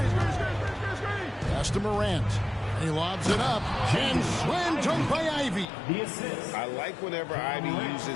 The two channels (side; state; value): right; drops out; at 5.7 s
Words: Pass to Morant. He lobs it up. And slam dunk by Ivy. I like whenever Ivy